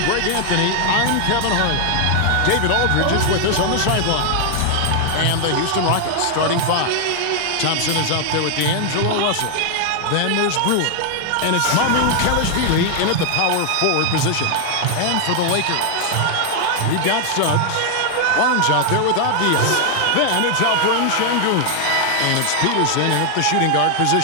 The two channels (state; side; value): different; both; correlation 0.00